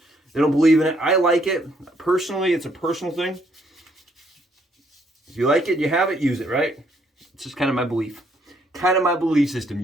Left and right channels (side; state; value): both; normal; correlation 0.70